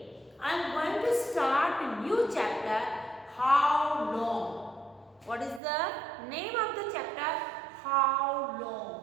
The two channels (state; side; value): drops out; left; at 5.6 s